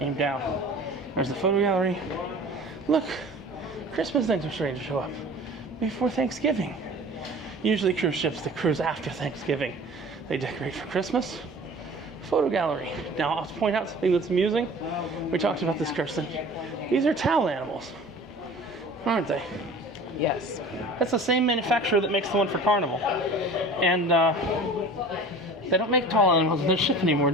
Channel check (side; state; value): both; normal; correlation 0.42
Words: down. There's the photo gallery. Look, Christmas things are starting to show up before Thanksgiving. Usually cruise ships that cruise after Thanksgiving, they decorate for Christmas. Photo gallery. Now I'll point out something that's amusing. We talked about this, Kirsten. These are towel animals, aren't they? Yes. That's the same manufacturer that makes the one for Carnival. And they don't make towel animals on this ship anymore,